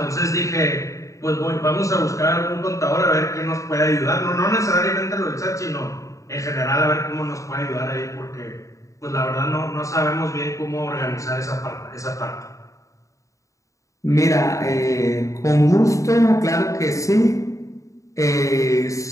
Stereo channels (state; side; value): late; right; 0.16 ms